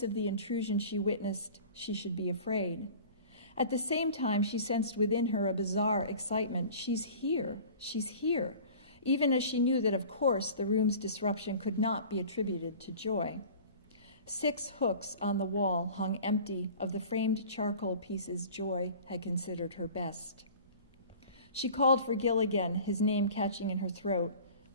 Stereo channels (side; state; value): both; inverted; correlation -0.42